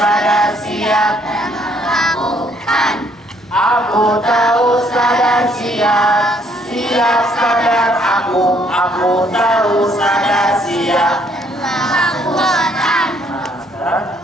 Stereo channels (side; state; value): both; normal; correlation 0.66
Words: siap dan melakukan. Aku tahu, sadar, siap, siap sadar aku tahu, sadar, siap dan melakukan. Nah, sekarang